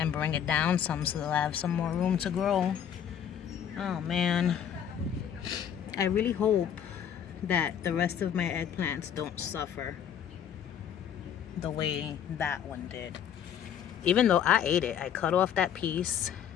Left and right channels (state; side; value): quieter; right; 9.0 dB